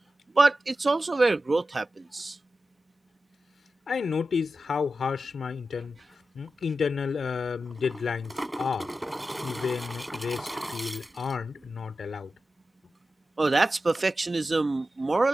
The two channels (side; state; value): both; normal; correlation 0.92